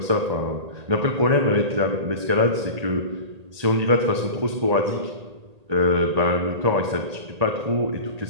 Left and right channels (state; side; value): late; left; 1.8 ms